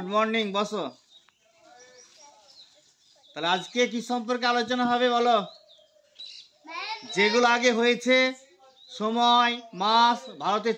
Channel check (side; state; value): both; identical; correlation 1.00